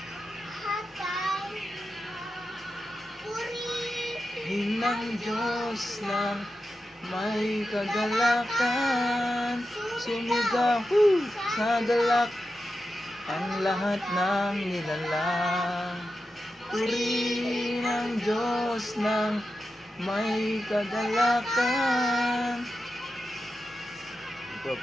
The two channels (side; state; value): both; normal; correlation 0.90